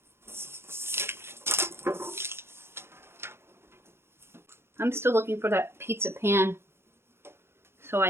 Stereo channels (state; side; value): late; left; 0.12 ms